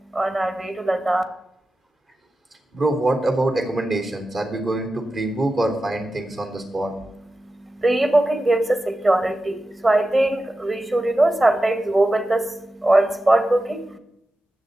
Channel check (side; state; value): both; normal; correlation 0.93